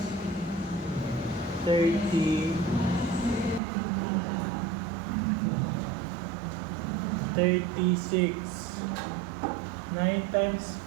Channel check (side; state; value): left; drops out; at 3.6 s